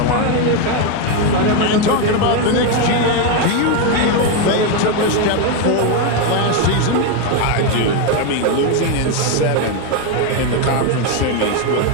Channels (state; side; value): different; both; correlation 0.02